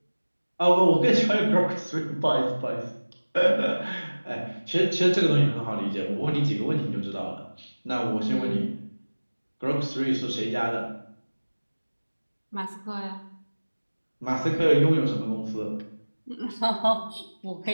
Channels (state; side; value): inverted; both; correlation -1.00